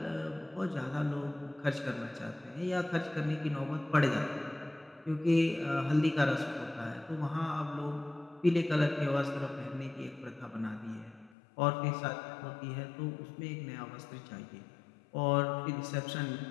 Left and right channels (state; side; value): drops out; right; at 11.3 s